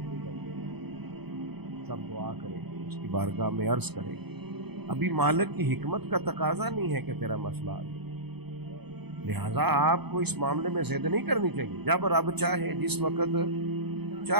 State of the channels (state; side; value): late; left; 0.98 ms